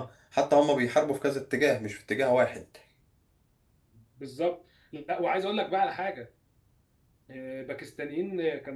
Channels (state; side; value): identical; both; correlation 1.00